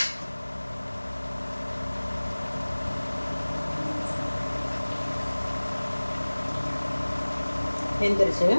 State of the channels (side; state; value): both; inverted; correlation -1.00